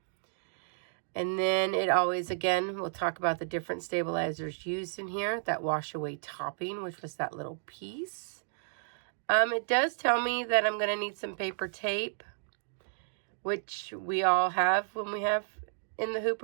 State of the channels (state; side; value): silent; left; digital silence